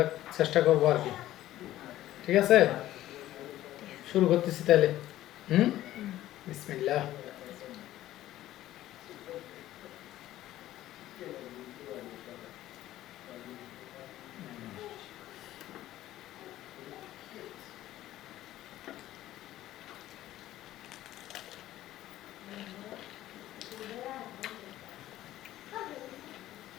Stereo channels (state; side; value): quieter; right; 14.3 dB